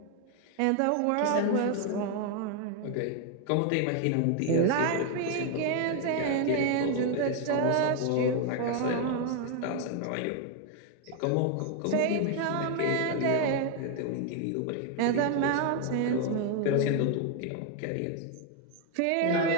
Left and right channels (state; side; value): different; both; correlation 0.01